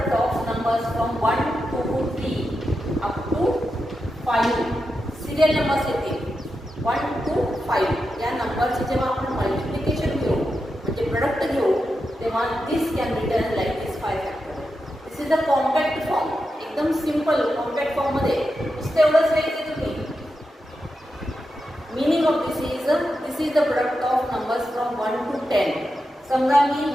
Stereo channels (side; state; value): both; normal; correlation 0.88